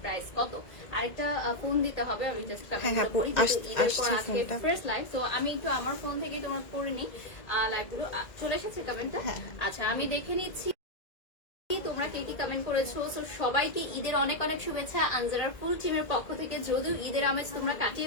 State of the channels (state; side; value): late; right; 2.0 ms